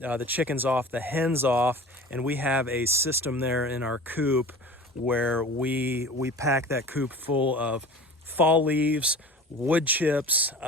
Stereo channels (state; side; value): normal; both; correlation 0.39